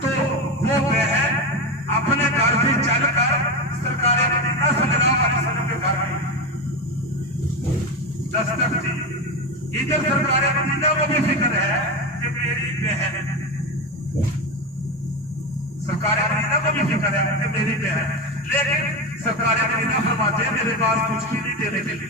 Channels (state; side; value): normal; both; correlation 0.17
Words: तो वो बहन अपने घर से चलकर सरकारे मदीना सल्लल्लाहु अलैहि वसल्लम के घर गई, दस्तक दी। इधर सरकारे मदीना को भी फिक्र है कि मेरी बहन, सरकारे मदीना को भी फिक्र है कि मेरी बहन, लेकिन सरकारे मदीना फरमाते हैं मेरे पास कुछ भी नहीं देने के